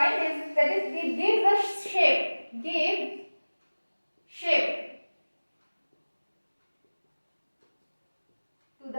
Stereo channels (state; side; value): inverted; both; correlation -1.00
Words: is that is it gives the shape to